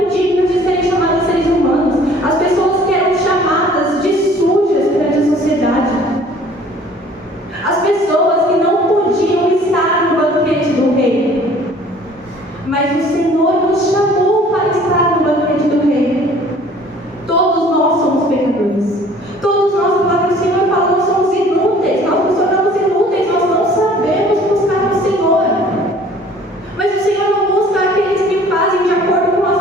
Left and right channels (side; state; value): both; normal; correlation 0.52